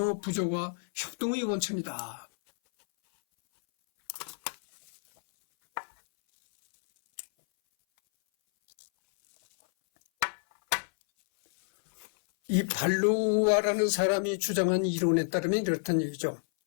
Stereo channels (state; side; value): silent; right; 59 dB below the other